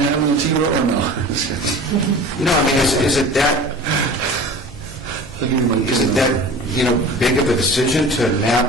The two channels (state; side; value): normal; both; correlation 0.38